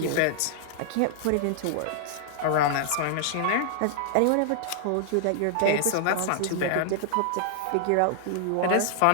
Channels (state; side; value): different; both; correlation -0.01